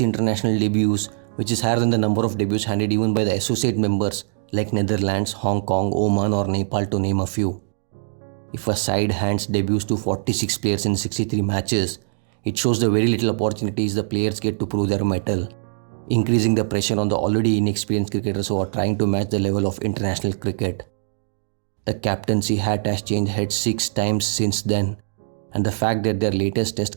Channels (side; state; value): left; silent; digital silence